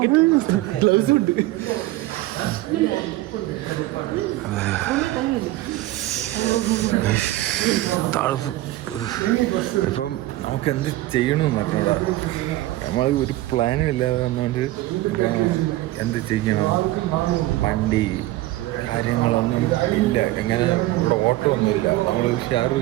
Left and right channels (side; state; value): left; quieter; 17.0 dB